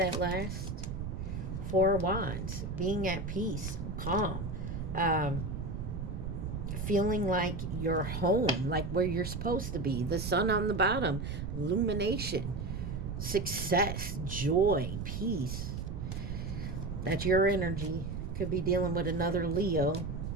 lasts. Four of Wands. Being at peace. Calm. Feeling like you're home, like where you're supposed to be. The sun on the bottom. Illumination. Success. Joy. Peace. That's your energy. Could be dealing with another Leo.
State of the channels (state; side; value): noise; right; rumble, 5 dB below the sound